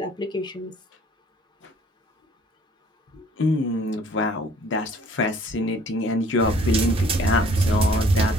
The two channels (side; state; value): both; normal; correlation 0.56